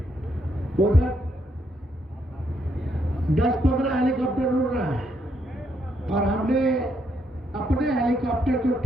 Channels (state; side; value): normal; both; correlation 0.77